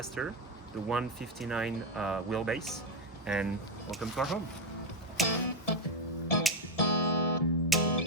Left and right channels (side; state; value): both; normal; correlation 0.07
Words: the 159 wheelbase, and welcome to our home.